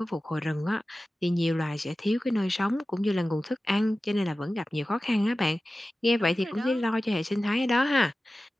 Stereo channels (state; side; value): normal; both; correlation 0.95